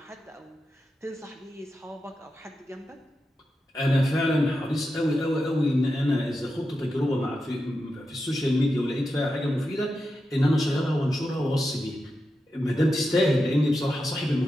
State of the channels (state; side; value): normal; both; correlation 0.89